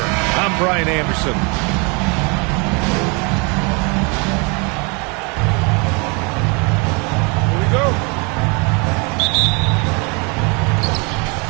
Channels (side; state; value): left; quieter; 31.4 dB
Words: I'm Brian Anderson. Here we go.